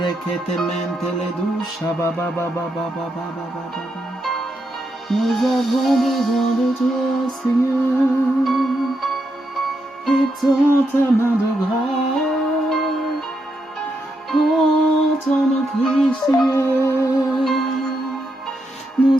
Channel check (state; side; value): normal; both; correlation 0.82